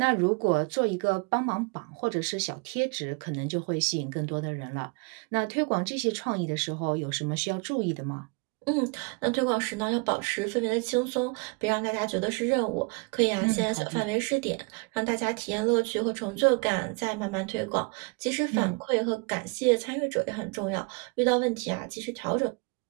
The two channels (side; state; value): left; quieter; 31.5 dB